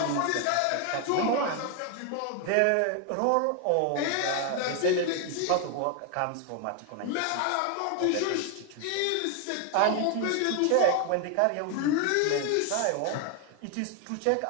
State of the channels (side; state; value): both; different; correlation 0.01